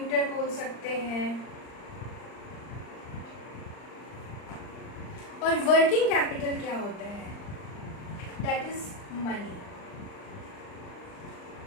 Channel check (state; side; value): late; right; 39 ms